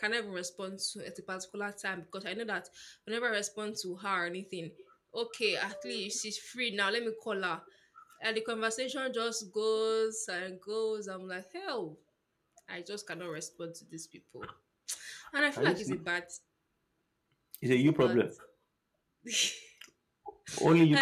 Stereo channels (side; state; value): both; identical; correlation 1.00